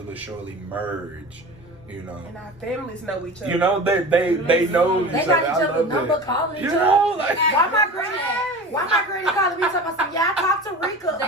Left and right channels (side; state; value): both; normal; correlation 0.34